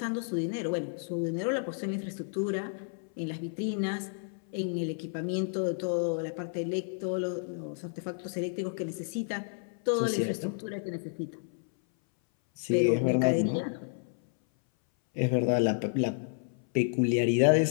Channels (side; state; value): right; silent; 57 dB below the other